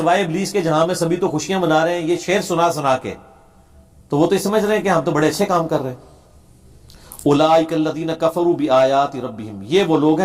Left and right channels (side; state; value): both; identical; correlation 1.00